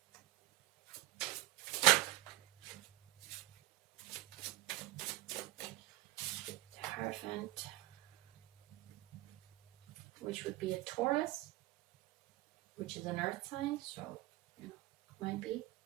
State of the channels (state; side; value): quieter; left; 17.9 dB